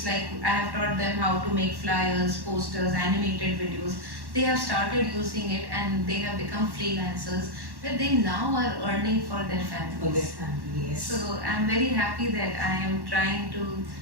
like I have taught them how to make flyers, posters, animated videos. They have started using it, and they have become freelancers, but they now are earning for their families. Yes. So I'm very happy that I am trying to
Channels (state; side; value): late; left; 1.1 ms